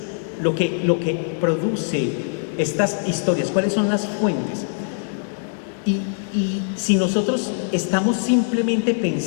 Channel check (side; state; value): right; silent; digital silence